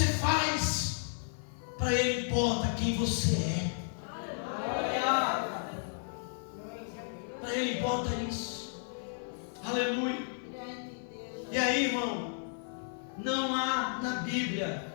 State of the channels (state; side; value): silent; right; 56 dB below the other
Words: faz, para Ele importa quem você é. Para Ele importa isso. Aleluia. E aí, irmão, não há na Bíblia